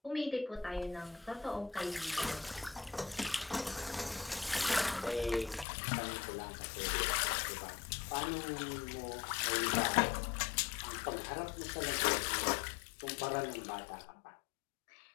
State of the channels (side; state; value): right; drops out; at 5.7 s